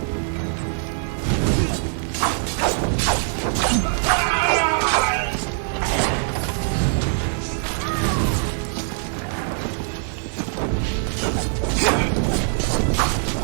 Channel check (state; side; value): silent; left; 60 dB below the other